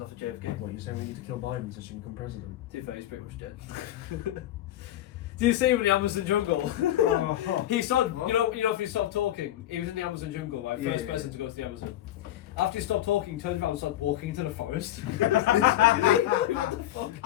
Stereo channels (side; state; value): right; quieter; 13.3 dB